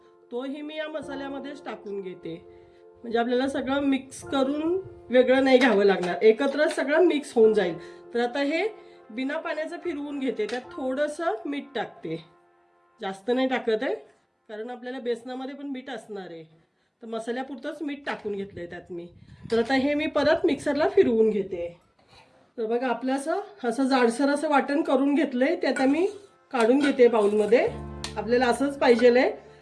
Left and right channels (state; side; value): identical; both; correlation 1.00